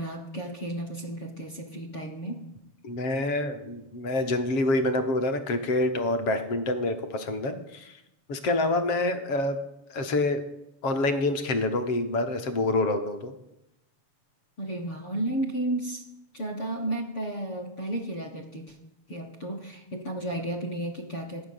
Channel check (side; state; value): right; late; 7.4 ms